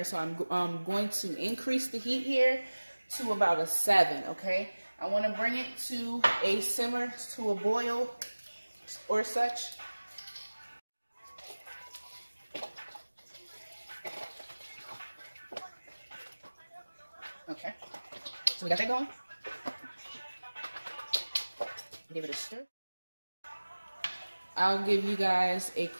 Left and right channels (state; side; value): inverted; both; correlation -1.00